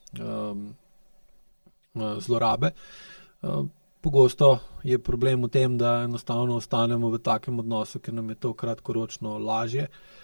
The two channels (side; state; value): both; inverted; correlation -1.00